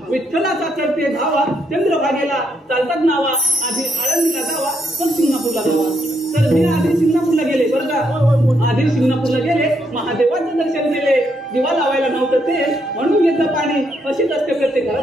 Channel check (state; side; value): normal; both; correlation 0.76